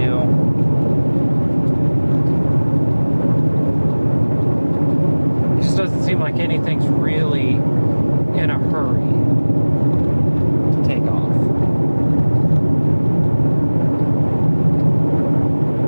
It just doesn't seem like anything's really in a hurry to take off.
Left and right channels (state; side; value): inverted; both; correlation -1.00